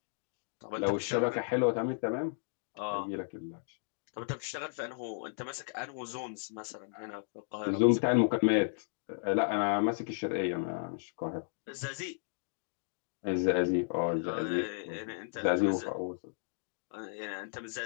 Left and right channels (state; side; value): silent; right; digital silence